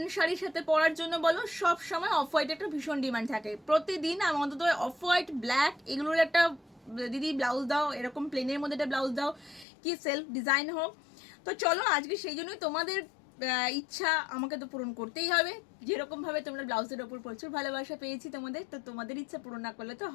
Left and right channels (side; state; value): right; drops out; at 9.7 s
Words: শাড়ির সাথে পরার জন্য বলো, সব সময় অফ হোয়াইট একটা ভীষণ ডিমান্ড থাকে। প্রতিদিন অন্তত অফ হোয়াইট ব্ল্যাক এগুলোর একটা দিদি ব্লাউজ দাও, এরকম প্লেনের মধ্যে একটা ব্লাউজ দাও, কি সেলফ ডিজাইন হোক। তো চলো আজকে সেই জন্যই তোমাদের ইচ্ছা আমাকে তো পূরণ করতেই হবে। যেরকমভাবে তোমরা ব্লাউজের ওপর প্রচুর ভালোবাসা পেয়েছি তোমাদের, তো তোমাদের ইচ্ছা পূরণ না করলে তো